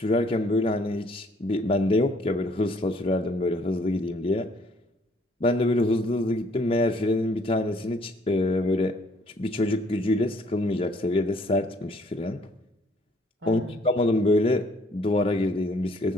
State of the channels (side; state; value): both; normal; correlation 0.62